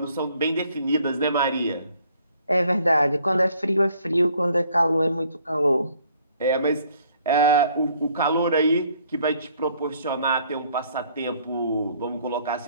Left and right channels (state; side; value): inverted; both; correlation -0.62